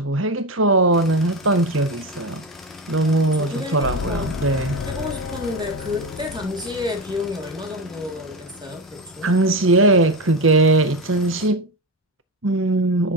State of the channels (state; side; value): normal; both; correlation 0.18